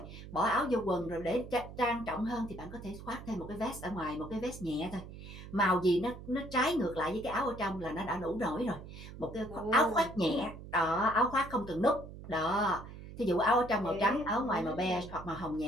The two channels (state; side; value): noise; right; hum, 13 dB below the sound